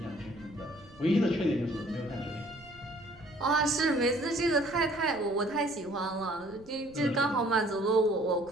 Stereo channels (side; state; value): right; noise; rumble, 24 dB below the sound